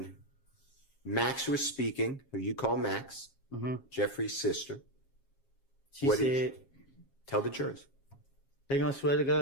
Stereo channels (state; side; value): late; right; 7.4 ms